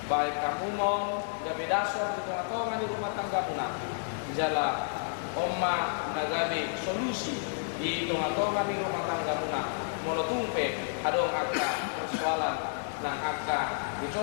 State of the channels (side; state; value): right; silent; digital silence